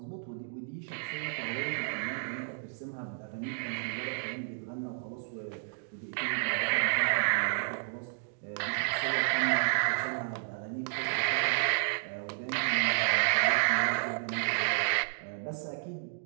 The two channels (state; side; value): silent; left; digital silence